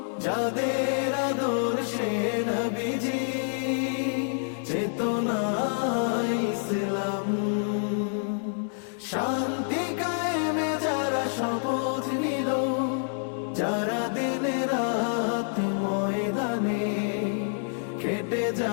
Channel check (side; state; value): right; silent; 60 dB below the other